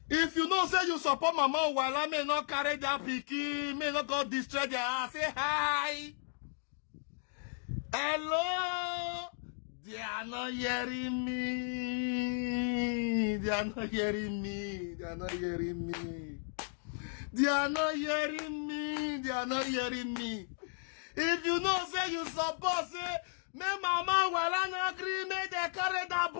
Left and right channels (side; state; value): right; silent; digital silence